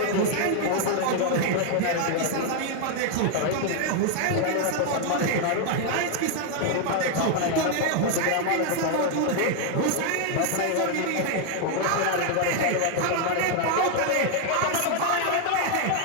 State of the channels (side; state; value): both; different; correlation 0.00